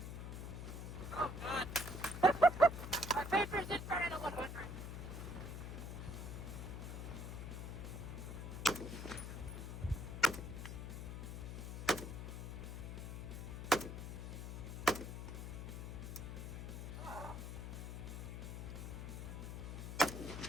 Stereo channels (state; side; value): noise; left; hum, 6 dB below the sound